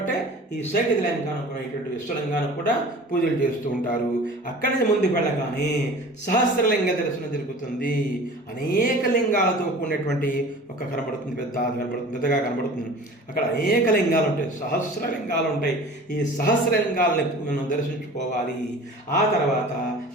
ఈ సైకతలింగానికి విశ్వలింగానికి కూడా పూజలు చేస్తూ ఉంటారు. అక్కడి నుంచి ముందుకు వెళ్ళగానే సహస్రలింగ దర్శనం జరుగుతుంది. అనేక లింగాలతో కూడినటువంటి ఒక కనబడుతుంది, పెద్దగా కనబడుతుంది. అక్కడ అనేక లింగాలు ఉంటాయి, సహస్రలింగాలు ఉంటాయి. ఈ సహస్రలింగాలని మనం దర్శించుకోవాలి. ఆ తర్వాత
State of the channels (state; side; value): normal; both; correlation 0.41